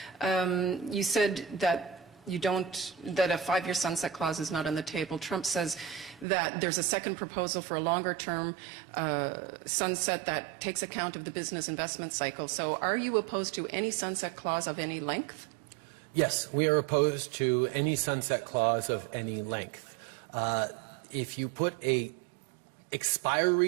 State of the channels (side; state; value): left; drops out; at 6.2 s